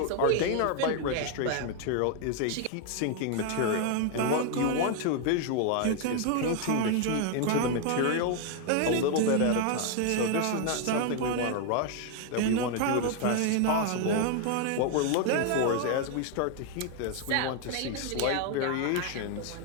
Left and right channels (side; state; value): both; different; correlation 0.00